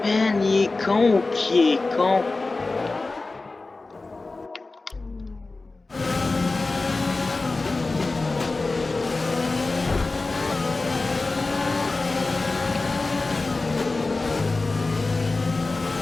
Man, il est con, qui est con?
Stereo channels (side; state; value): right; quieter; 3.5 dB